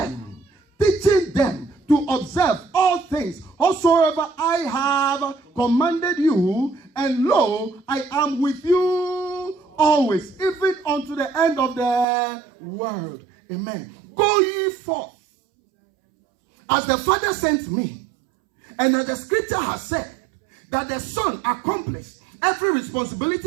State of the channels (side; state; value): left; drops out; at 12.1 s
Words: to observe all things whatsoever I have commanded you, and lo, I am with you always, even unto the end of the world. Amen. Go ye forth, as the Father sent me, and as the scripture has said, that the Son accomplished every